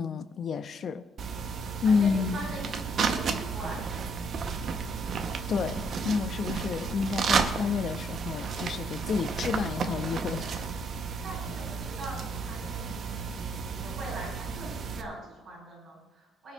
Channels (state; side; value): normal; both; correlation 0.69